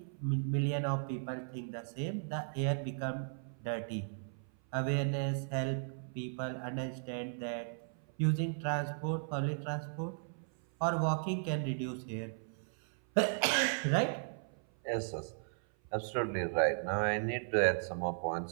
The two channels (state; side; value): silent; left; 54 dB below the other